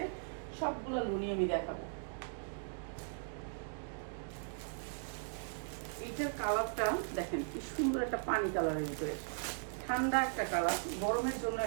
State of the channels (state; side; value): silent; left; digital silence